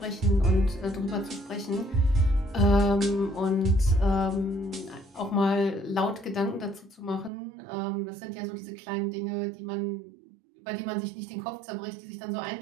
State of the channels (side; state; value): left; drops out; at 7.3 s